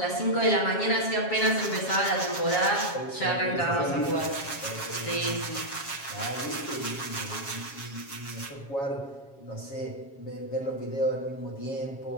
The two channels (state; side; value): late; right; 7.3 ms